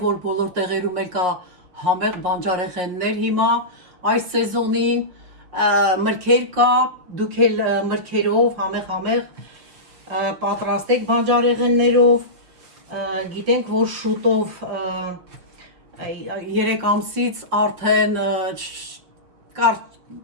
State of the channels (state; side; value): late; left; 5.6 ms